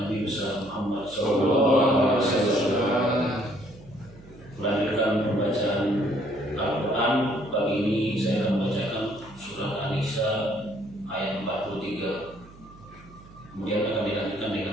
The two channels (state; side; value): noise; right; hum, 21 dB below the sound